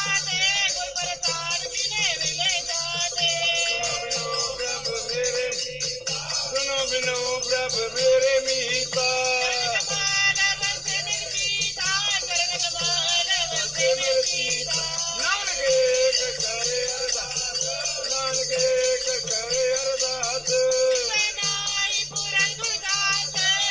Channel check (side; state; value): both; identical; correlation 1.00